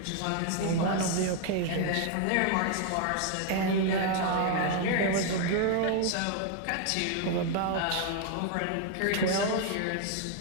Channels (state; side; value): different; both; correlation 0.00